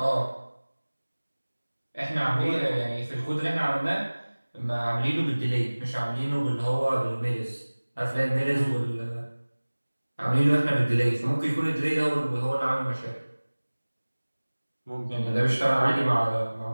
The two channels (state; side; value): inverted; both; correlation -1.00